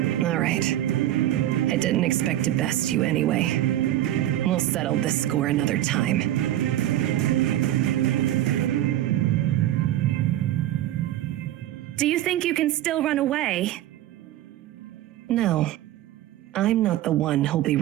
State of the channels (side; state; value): left; quieter; 13.4 dB